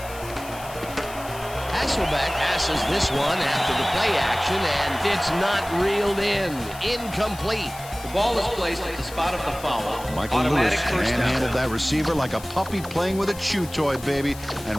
Hasselbeck passes this one after the play action, and it's not reeled in. Incomplete. The ball is placed at the spot of the foul. Michael Automatic Lewis first down. manhandled that receiver like a puppy playing with a chew toy, baby,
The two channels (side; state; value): left; noise; hiss, 16 dB below the sound